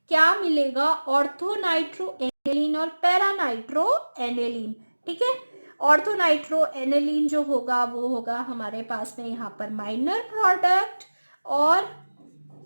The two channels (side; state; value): both; inverted; correlation -1.00